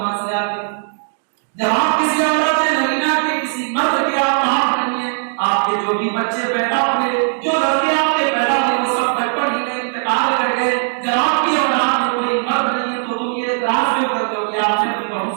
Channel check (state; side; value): silent; left; digital silence